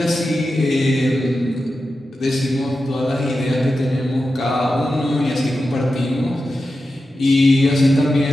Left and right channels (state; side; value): normal; both; correlation 0.91